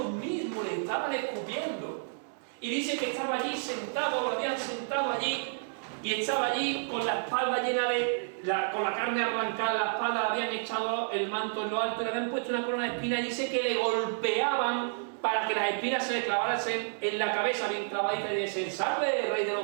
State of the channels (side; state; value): left; silent; digital silence